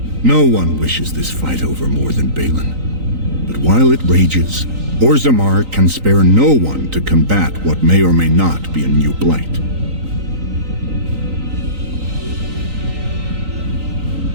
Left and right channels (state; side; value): late; left; 3.9 ms